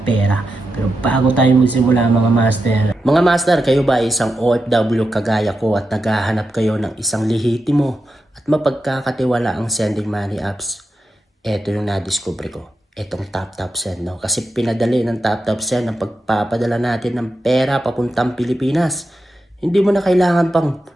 pera. Pero bago tayo magsimula mga master, kayo ba ay isang OFW kagaya ko at naghahanap kayo ng isang lehitimo at mapagkakatiwala ang sending money apps? Ito yung nadiscover ko. Itong TapTapSend, no? Kasi pinadali ng TapTapSend ang pagpapadala natin ng pera papuntang Pilipinas. Hindi mo na kailangan pang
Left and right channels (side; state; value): both; normal; correlation 0.88